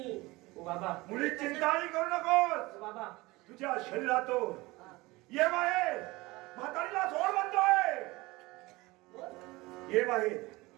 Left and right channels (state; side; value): quieter; left; 21.6 dB